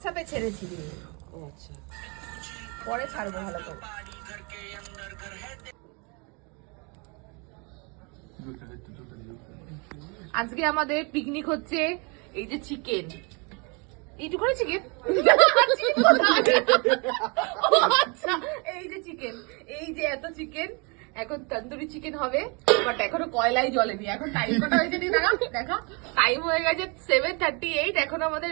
ছেড়েছি। ও আচ্ছা, পরে ছাড়বো ভালো করে। আজকে আমাদের পিকনিক হচ্ছে। এই যে চিকেন, এইটুখানি চিকেন। আচ্ছা, এই যে চিকেন, এই যে এত চিকেন। এখন তন্দুরি চিকেন হবে, বাট এখনো কয়লাই জ্বলেনি। এখন টাইম কটা হয়েছে নি দেখা দেখা, টাইম হয়ে গেছে 7:38। এখন আমাদের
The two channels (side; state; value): left; quieter; 31.6 dB